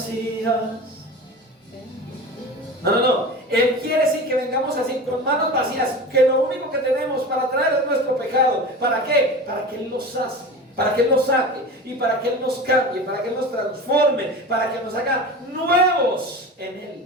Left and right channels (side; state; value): both; normal; correlation 0.32